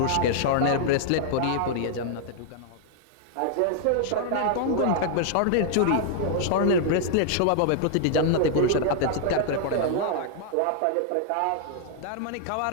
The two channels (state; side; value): different; both; correlation -0.01